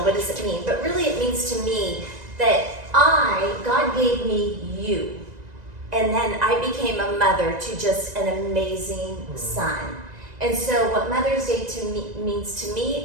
what does it mean? But really it means to me that God gave me you. And then I became a mother to just an amazing son. And so what Mother's Day means to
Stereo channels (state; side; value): late; left; 1.9 ms